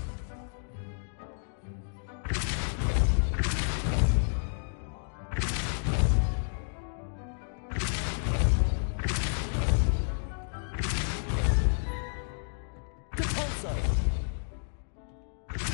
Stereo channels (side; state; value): right; silent; digital silence